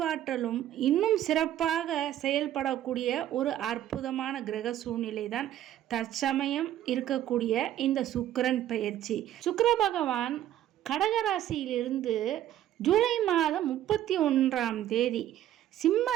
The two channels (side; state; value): left; quieter; 12.2 dB